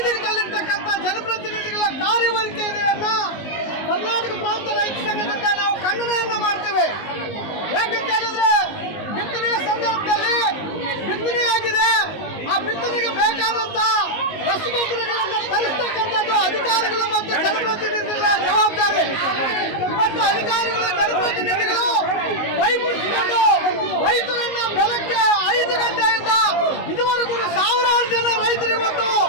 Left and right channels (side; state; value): right; late; 19 ms